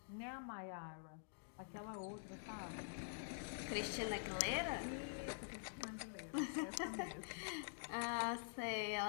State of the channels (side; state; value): right; silent; digital silence